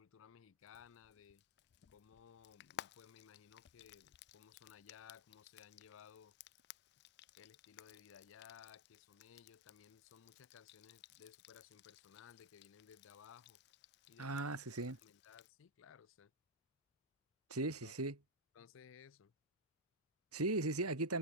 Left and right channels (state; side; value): normal; both; correlation -0.04